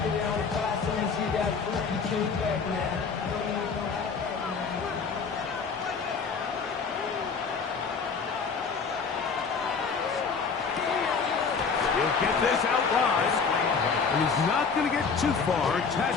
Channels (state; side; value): quieter; right; 5.4 dB